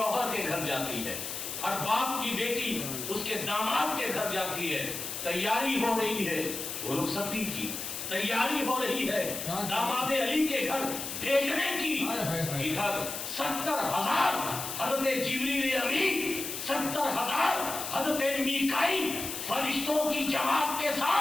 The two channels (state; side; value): noise; left; hiss, 6 dB below the sound